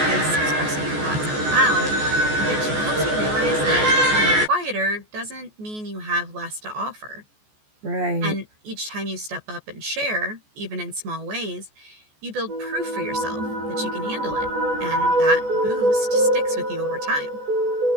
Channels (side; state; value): left; late; 14 ms